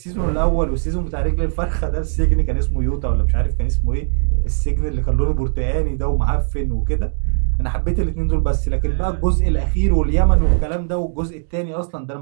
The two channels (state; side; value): silent; left; digital silence